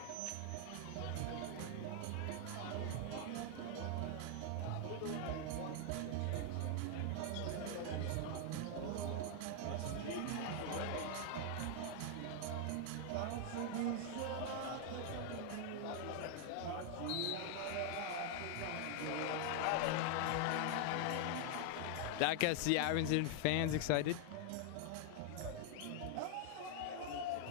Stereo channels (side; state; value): both; different; correlation 0.00